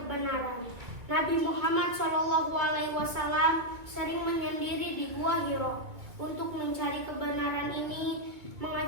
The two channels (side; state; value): left; late; 2.6 ms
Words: Nabi Muhammad Shallallahu Alaihi Wasallam sering menyendiri di Gua Hiro. Untuk mencari kebenaran ini